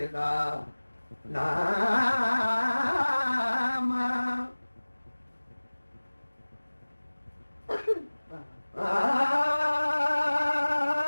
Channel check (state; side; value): inverted; both; correlation -1.00